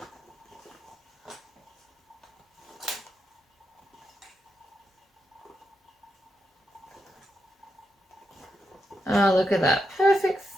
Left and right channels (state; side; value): normal; both; correlation 0.85